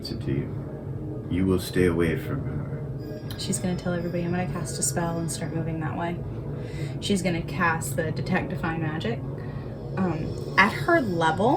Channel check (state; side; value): identical; both; correlation 1.00